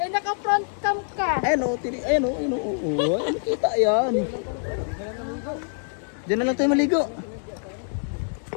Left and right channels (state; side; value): silent; right; 62 dB below the other